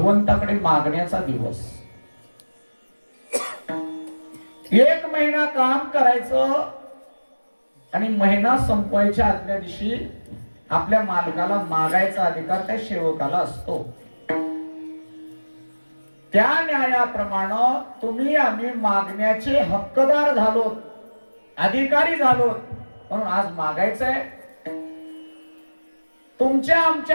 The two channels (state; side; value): inverted; both; correlation -1.00